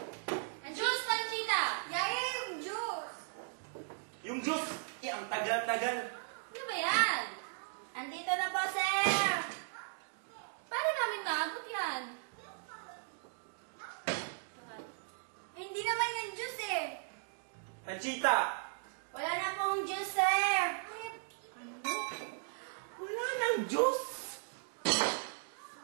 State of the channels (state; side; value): silent; left; digital silence